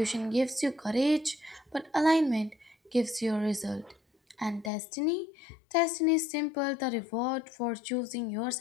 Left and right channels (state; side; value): drops out; right; at 4.7 s